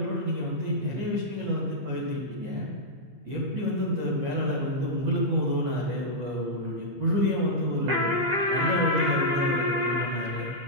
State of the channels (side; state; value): left; late; 15 ms